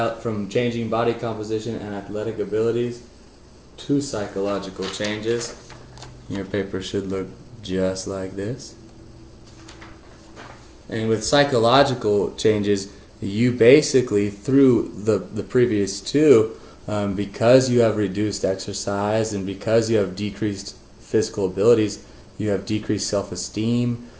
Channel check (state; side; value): identical; both; correlation 1.00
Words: changing body composition and athletic abilities two psychological changes. Your paper should look just like this. And with psychological changes, you basically, through the previous two, because you have reduced exercise and because you have decreased physical abilities, you have decreased self-esteem,